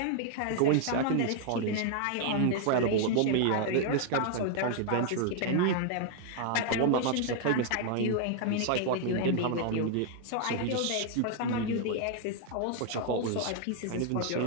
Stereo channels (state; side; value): different; both; correlation 0.00